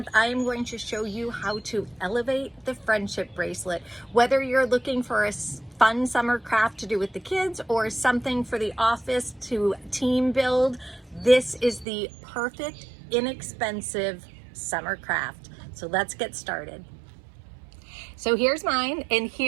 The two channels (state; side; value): drops out; left; at 11.9 s